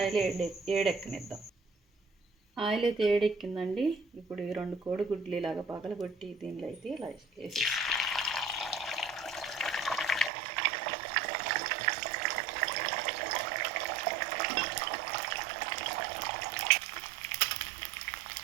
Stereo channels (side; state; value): left; drops out; at 10.3 s